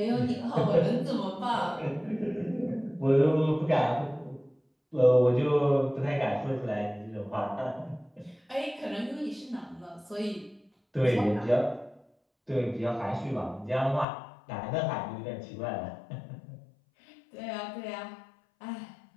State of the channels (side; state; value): right; drops out; at 14.1 s